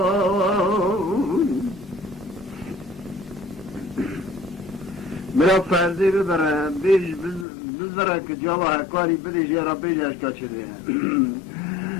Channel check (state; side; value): drops out; right; at 7.5 s